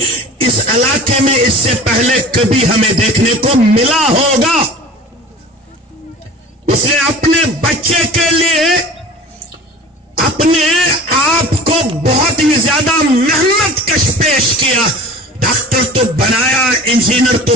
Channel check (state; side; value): normal; both; correlation 0.39